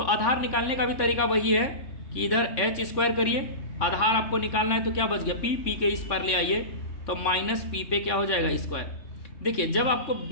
आधार निकालने का भी तरीका वही है कि इधर h स्क्वायर करिए, आधार आपको निकालना है तो क्या बच गया, p के इस पर ले आइए तो माइनस p पे क्या हो जाएगा, स्क्वायर। देखिए, जब आपको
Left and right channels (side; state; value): right; late; 3.6 ms